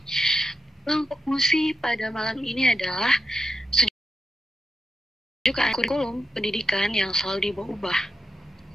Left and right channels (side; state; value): both; normal; correlation 0.87